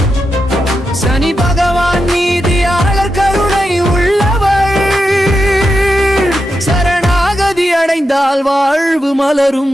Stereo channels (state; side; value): normal; both; correlation 0.87